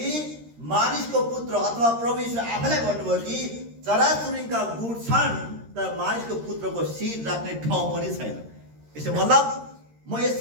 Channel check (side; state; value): left; late; 13 ms